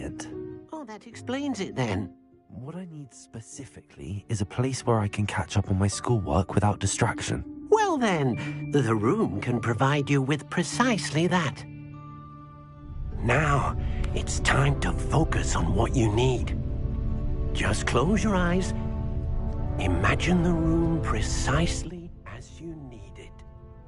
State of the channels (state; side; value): identical; both; correlation 1.00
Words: Oh, that explains it then. What I need specifically is a place where I can catch up on my schoolwork without distraction. Well then, the room can provide you with precisely that. Now, it's time to focus on what you need. Just close your eyes. Imagine the room precisely as you need it.